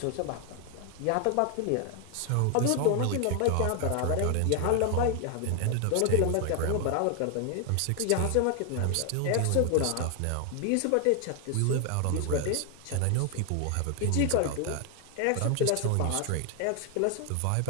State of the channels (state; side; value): different; both; correlation 0.00